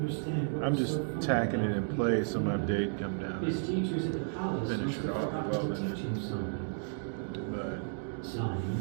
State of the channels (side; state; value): left; silent; digital silence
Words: I'm just tacking it in place on my date come down. His teachers at the palace Finish must it have off forgotten well, to teach him something. But